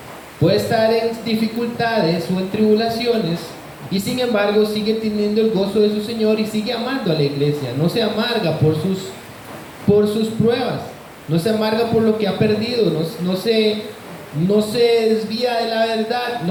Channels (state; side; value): identical; both; correlation 1.00